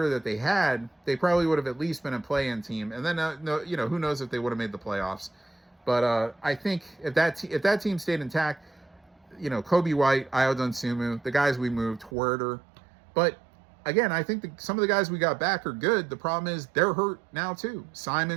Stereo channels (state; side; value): drops out; left; at 12.1 s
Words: that they had, they probably would have at least been a play-in team. And then, no, who knows if they would have made the playoffs. But I think if that team stayed intact, Kobe White, Ayo Dosunmu, the guys we moved, Huerter. But again, I think some of the guys we got back are good. The problem is they're hurt now too.